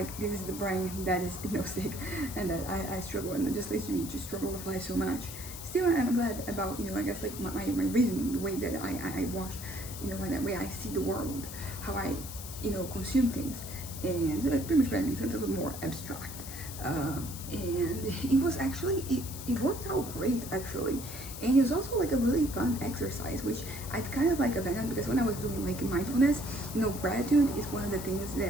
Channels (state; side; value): noise; left; hiss, 11 dB below the sound